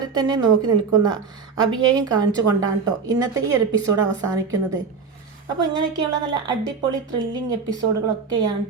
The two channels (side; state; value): left; quieter; 5.2 dB